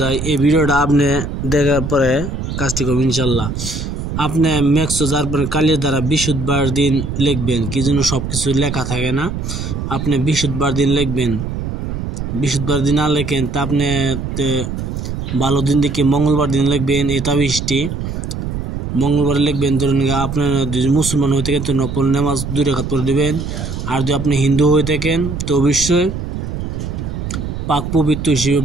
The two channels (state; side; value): noise; right; rumble, 5 dB below the sound